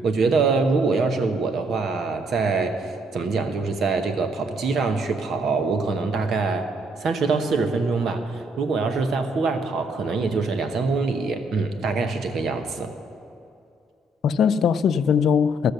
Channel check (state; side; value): normal; both; correlation 0.69